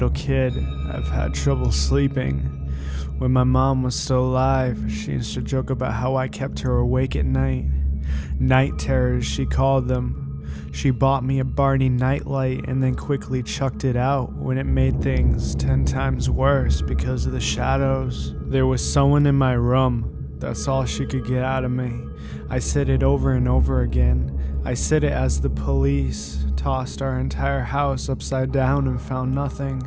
kid, I've had trouble sleeping. When my mom was still alive, she used to joke about how I kept her awake at night. Night terrors, she called them. She bought me a Barney nightlight and then quickly chucked it out when it made things 10 times worse because of the shadows. There was someone in my room. That's all she could get out of me. I said it over and over again. I said it as the police tossed our entire house upside down and found nothing.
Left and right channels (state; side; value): identical; both; correlation 1.00